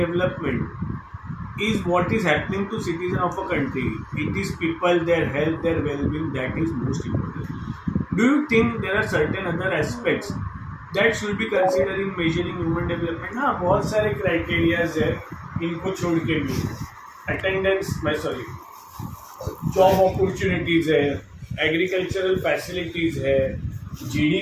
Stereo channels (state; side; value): identical; both; correlation 1.00